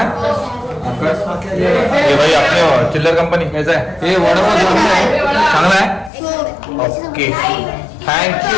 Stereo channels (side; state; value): right; drops out; at 6.1 s